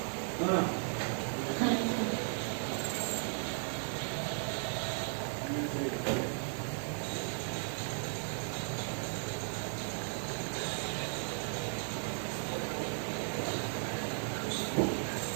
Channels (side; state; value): left; silent; 54 dB below the other